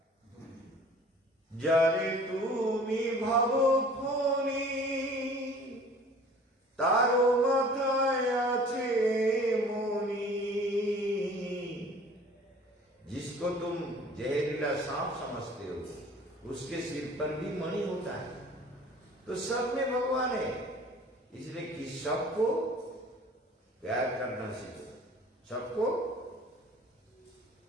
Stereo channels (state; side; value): normal; both; correlation 0.48